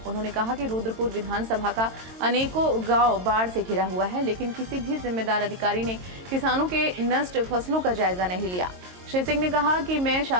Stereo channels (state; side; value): late; left; 22 ms